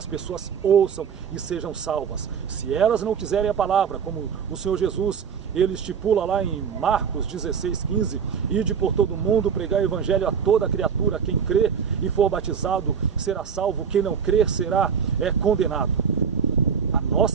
pessoas ouçam e sejam salvas. Se elas não quiserem a palavra, como o Senhor Jesus, ele estipula lá em Marcos 16:15, ide por todo mundo pregar o Evangelho a toda criatura, quem crê e for batizado será salvo, quem não crer será condenado. A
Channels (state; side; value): quieter; left; 6.9 dB